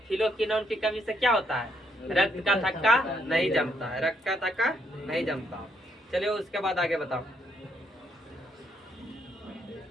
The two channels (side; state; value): both; normal; correlation 0.73